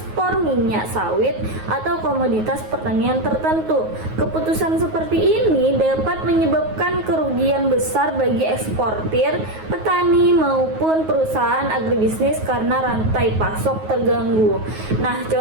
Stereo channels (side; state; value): left; late; 9.4 ms